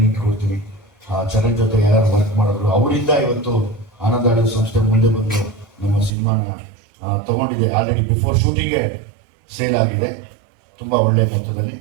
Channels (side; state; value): left; drops out; at 6.1 s